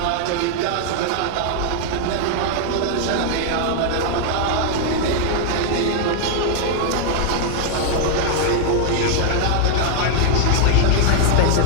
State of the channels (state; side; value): different; both; correlation 0.00